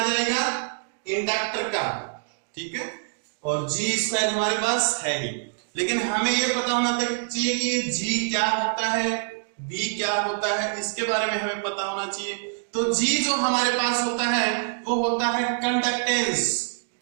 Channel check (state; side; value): silent; left; digital silence